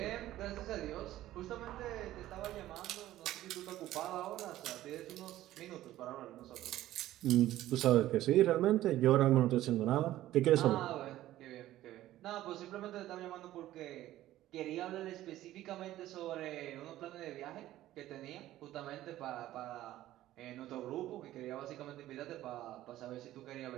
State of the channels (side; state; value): left; quieter; 14.5 dB